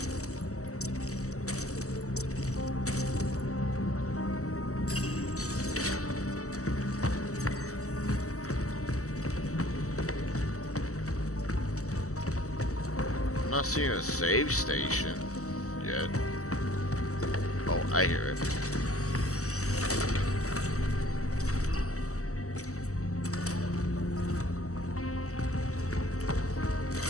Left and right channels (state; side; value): late; right; 0.65 ms